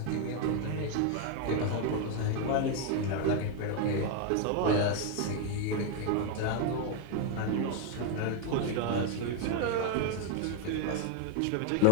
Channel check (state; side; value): different; both; correlation 0.01